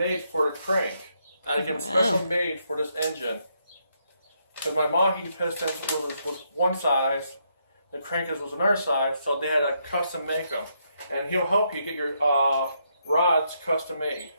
for the crank. I had to get them special made for this engine. Because my Mahi piston was one size, the crankers was another size, so they had to custom make them. And he'll help you get your rods custom made.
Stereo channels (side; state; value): both; inverted; correlation -0.77